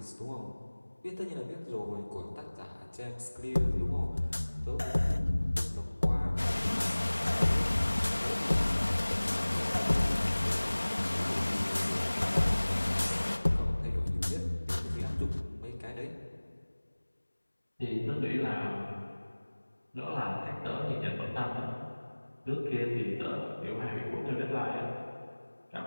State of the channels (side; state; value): both; inverted; correlation -1.00